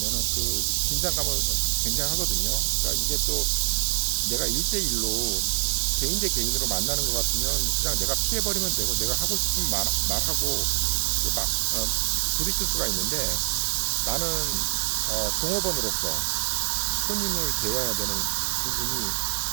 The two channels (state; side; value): silent; left; 62 dB below the other